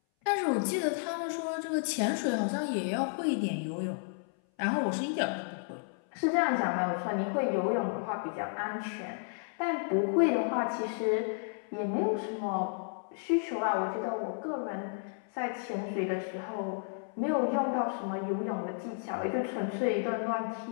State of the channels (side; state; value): right; silent; 56 dB below the other